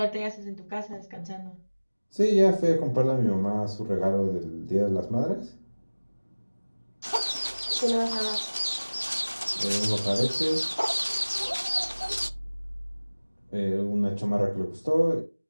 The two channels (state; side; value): inverted; both; correlation -1.00